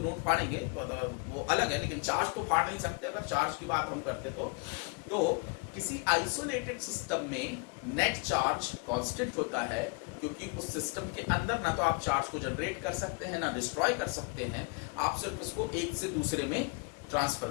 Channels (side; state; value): right; quieter; 33.8 dB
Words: फाड़ेंगे तो वो अलग है, लेकिन चार्ज तो फाड़ नहीं सकते। अगर चार्ज की बात हम करते तो किसी आइसोलेटेड सिस्टम में नेट चार्ज कांस्टेंट होता है, क्योंकि उस सिस्टम के अंदर ना तो आप चार्ज को जनरेट कर सकते हैं ना डिस्ट्रॉय कर सकते हैं, आप सिर्फ उसको एक से दूसरे में ट्रांसफर